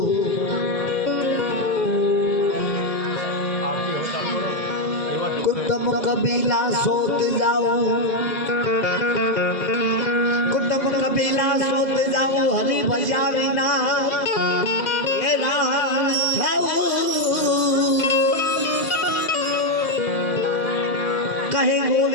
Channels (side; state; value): right; late; 1.9 ms